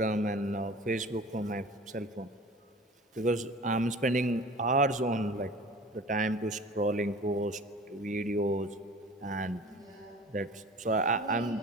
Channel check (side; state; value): both; normal; correlation 0.42